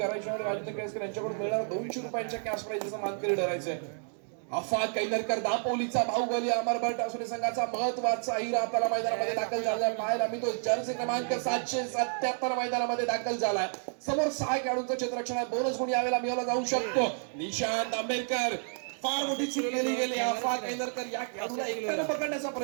आणि राजेंद्र केळसकर यांच्याकडून मिळणार 200 रुपयांच्या कॅश प्राइजचा मानकरी ठरायचंय. अफाक कैनरकर दापोलीचा बाहुबली अमरभट असुरी संघाचा महत्वाचा हिरा आपल्याला मैदानामध्ये दाखल झालाय. पाहायला मी तो जर्सी क्रमांक 777 मैदानामध्ये दाखल झालाय. समोर 6 खेळाडूंचं क्षेत्ररक्षण आहे. बोनस गुण यावेळेला मिळवला जाऊ शकतो. निशांत आंबेडकर फार मोठी चूक केली गेली. अफाक कैनरकर या खेळाडूला एकट्याने पकडण्याचा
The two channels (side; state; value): left; silent; 57 dB below the other